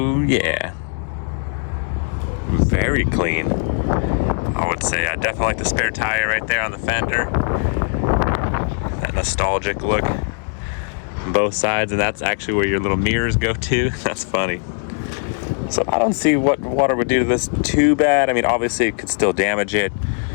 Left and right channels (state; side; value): silent; right; 55 dB below the other